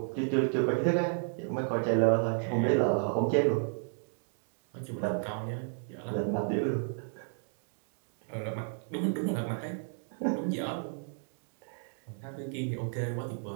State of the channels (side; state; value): left; silent; 56 dB below the other